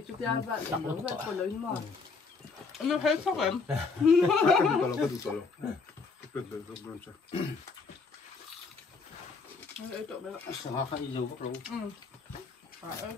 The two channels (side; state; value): right; quieter; 4.6 dB